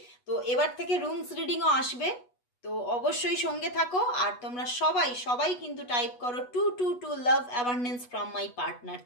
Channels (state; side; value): late; right; 8.2 ms